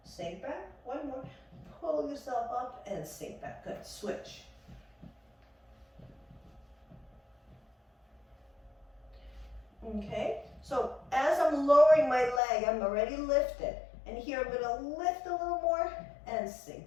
sink back. One more. Pull yourself up and sink back. Good. Switch. Okay. So as I'm lowering my leg, I'm already lifted. And here I'm going to lift a little more and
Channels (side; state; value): right; drops out; at 12.4 s